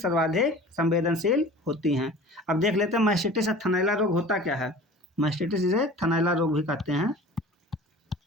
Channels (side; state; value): both; normal; correlation 0.42